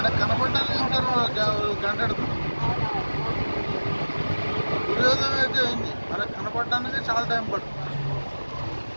కనపడడానికి ఇంకా గంట ఎడుతుంది. సూర్యోదయం అయితే అయింది, మనకు కనపడడానికి చాలా టైం పడుతుంది.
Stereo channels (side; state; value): both; inverted; correlation -1.00